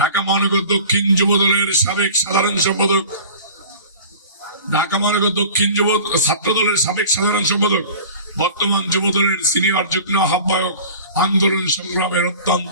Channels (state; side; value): inverted; both; correlation -0.41